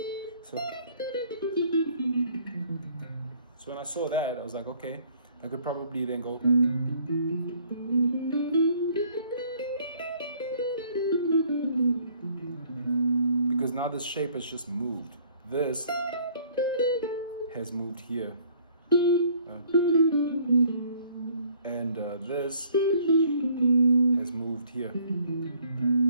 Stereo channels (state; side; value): inverted; both; correlation -0.59